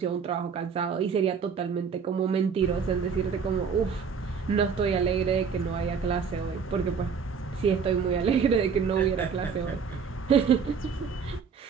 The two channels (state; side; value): quieter; left; 6.1 dB